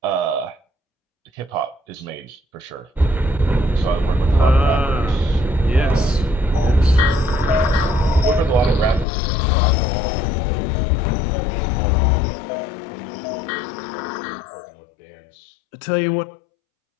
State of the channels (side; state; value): right; drops out; at 9.1 s